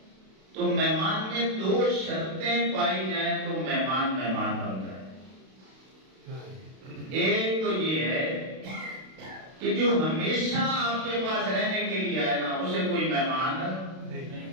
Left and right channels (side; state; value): left; late; 32 ms